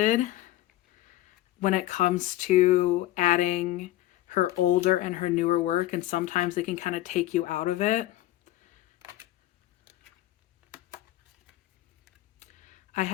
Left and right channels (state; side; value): quieter; right; 15.4 dB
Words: when it comes to adding her older and her newer work, and sometimes they can kind of take you out of it. I